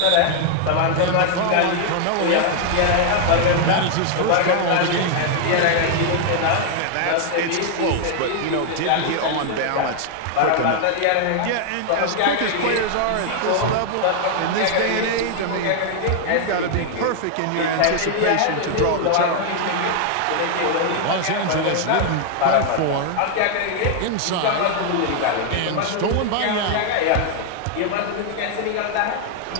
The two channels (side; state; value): both; different; correlation 0.00